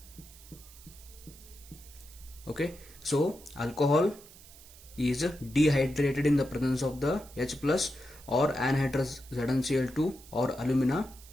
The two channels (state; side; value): noise; right; hiss, 20 dB below the sound